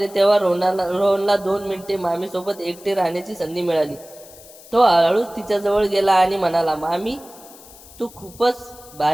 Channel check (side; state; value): left; noise; hiss, 21 dB below the sound